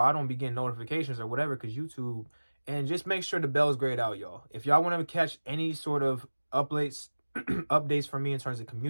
don't be getting notifications or whatever because YouTube. And just make sure the bell's grayed out, y'all. If y'all want to catch any sort of updates from me in terms of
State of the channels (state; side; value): inverted; both; correlation -1.00